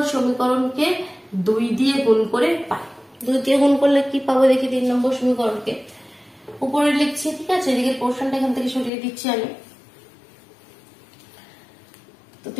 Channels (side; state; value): right; drops out; at 8.9 s